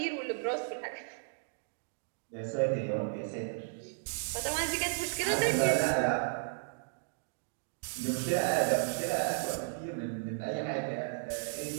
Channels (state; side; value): silent; left; digital silence